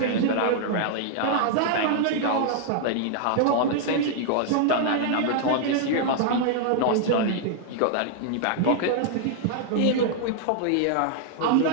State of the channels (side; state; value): both; different; correlation -0.01